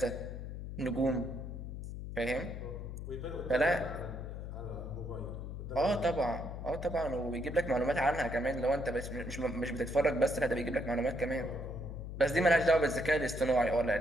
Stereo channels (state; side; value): noise; left; hum, 7 dB below the sound